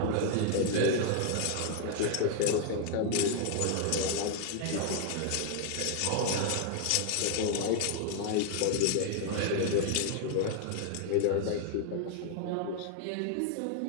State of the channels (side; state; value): both; different; correlation 0.00